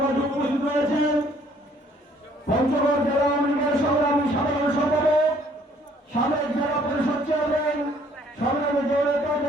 মাঝে উপস্থিত রয়েছেন। পঞ্চগড় জেলা আওয়ামী লীগের সংগ্রামী সাধারণ সম্পাদক সাবেক জেলা পরিষদ চেয়ারম্যান সংগ্রামী জনতা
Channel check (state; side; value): normal; both; correlation 0.61